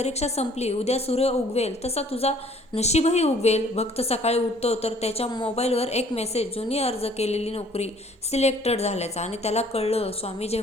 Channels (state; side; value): normal; both; correlation 0.57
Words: संपली, उद्या सूर्य उगवेल तसा तुझा नशीबही उगवेल. भक्त सकाळी उठतो तर त्याच्या मोबाईलवर एक मेसेज, जुनी अर्ज केलेली नोकरी सिलेक्टेड झाल्याचा. आणि त्याला कळलं, स्वामी